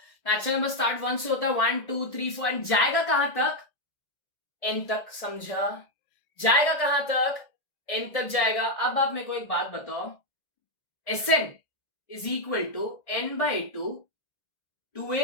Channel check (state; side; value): late; right; 1.6 ms